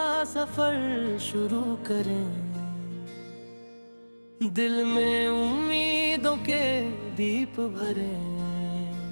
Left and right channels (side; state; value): both; inverted; correlation -1.00